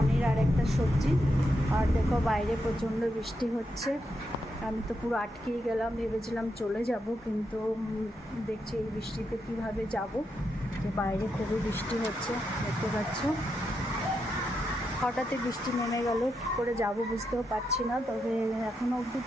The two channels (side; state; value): both; normal; correlation 0.84